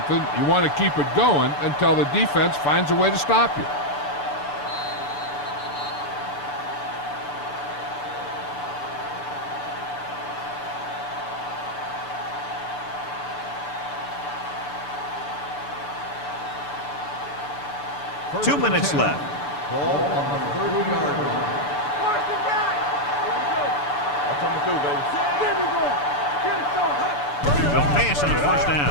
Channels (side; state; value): right; late; 6.9 ms